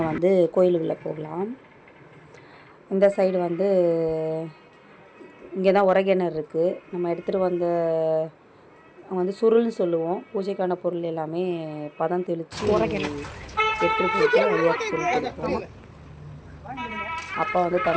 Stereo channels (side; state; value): both; identical; correlation 1.00